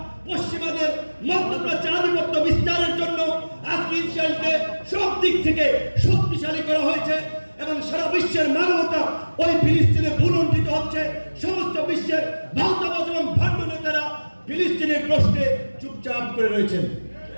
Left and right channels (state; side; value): inverted; both; correlation -1.00